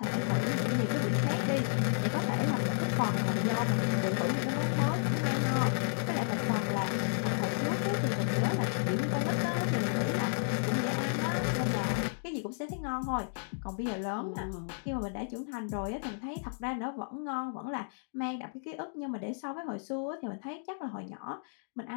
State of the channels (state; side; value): silent; right; digital silence